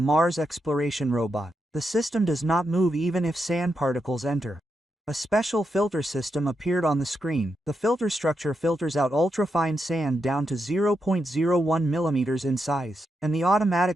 exploration robot. The system does not move even if sand particles enter. A special filter system appeared on the screen. The filter structure filters out ultrafine sand down to 0.01 millimeters in size, and the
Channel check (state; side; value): normal; both; correlation 0.84